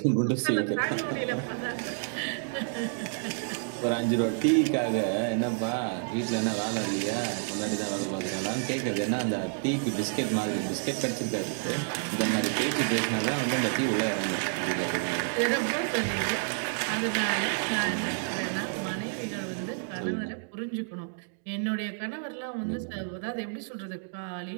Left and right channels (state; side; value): silent; left; digital silence